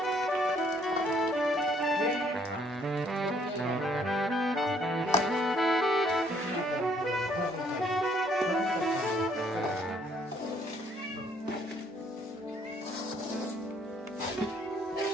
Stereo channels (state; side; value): normal; both; correlation 0.65